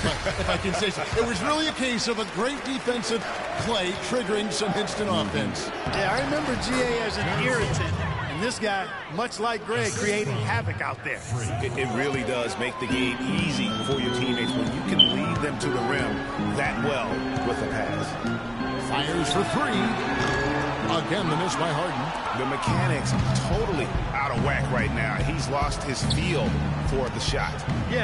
but if I can say so, it was really a case of a great defensive play triggering some instant offense. Yeah, I remember GA as an irritant, and this guy, much like Greg, creating havoc out there. It really does make the game easy for your teammates when you can lead them to the rim that well with a pass. Fires for three. Again, the miss by Harden. The mechanics totally out of whack right now. He's lost his feel for the shot.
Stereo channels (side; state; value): both; identical; correlation 1.00